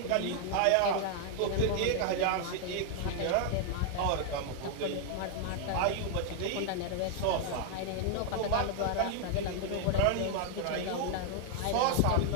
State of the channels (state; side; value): different; both; correlation 0.00